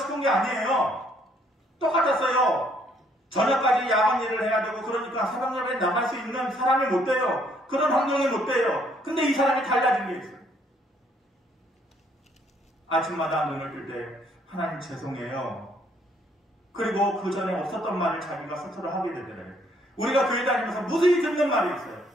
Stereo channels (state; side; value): normal; both; correlation 0.67